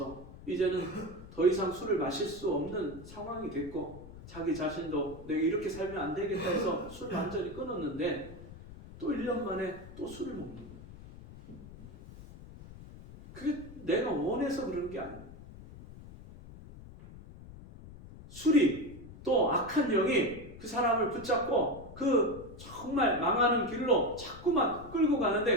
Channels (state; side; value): noise; left; rumble, 16 dB below the sound